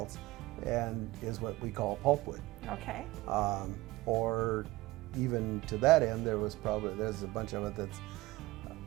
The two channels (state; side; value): quieter; left; 19.4 dB